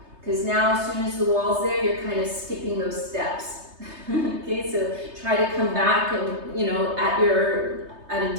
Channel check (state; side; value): late; left; 3.3 ms